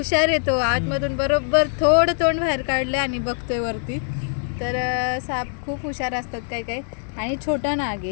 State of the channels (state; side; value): silent; right; 63 dB below the other